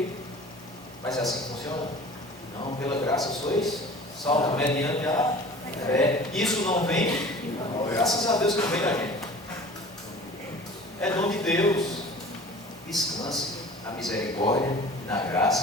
Mas é assim que funciona? Não, pela graça sois salvos mediante a fé. Isso não vem, graças a Deus que não vem da gente. É dom de Deus. Descanse na misericórdia e na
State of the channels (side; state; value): both; normal; correlation 0.43